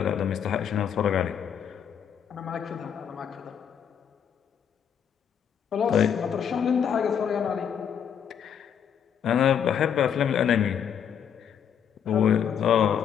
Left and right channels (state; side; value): quieter; right; 8.2 dB